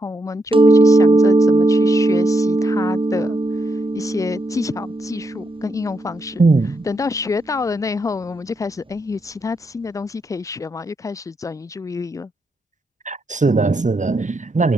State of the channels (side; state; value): both; normal; correlation 0.81